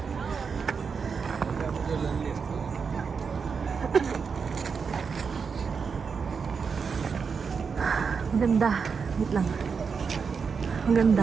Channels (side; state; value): left; quieter; 5.7 dB